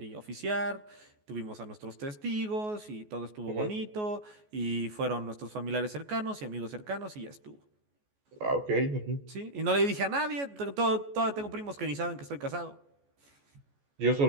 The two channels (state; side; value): late; left; 14 ms